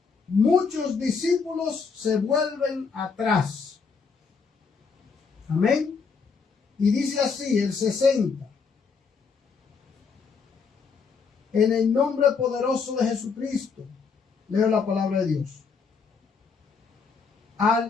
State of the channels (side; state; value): right; quieter; 5.3 dB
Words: muchos discípulos se vuelven atrás. Amén. Y dice así el 60. En el nombre poderoso de Jesucristo, leo la palabra de Dios.